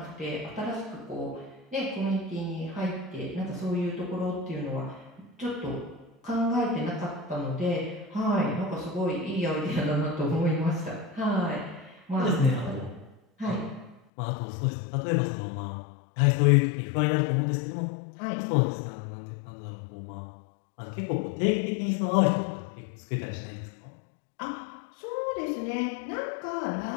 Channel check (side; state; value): right; drops out; at 14.0 s